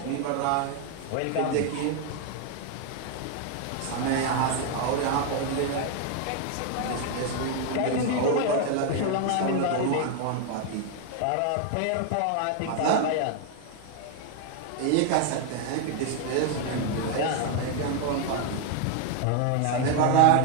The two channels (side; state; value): both; different; correlation 0.00